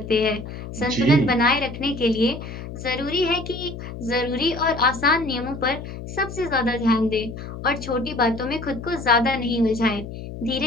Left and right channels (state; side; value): noise; left; hum, 10 dB below the sound